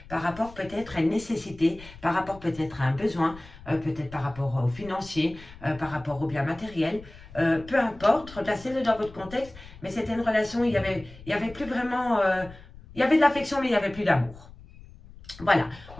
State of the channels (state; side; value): noise; left; rumble, 19 dB below the sound